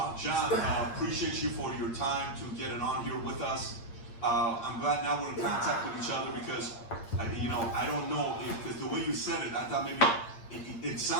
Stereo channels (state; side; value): late; right; 8.7 ms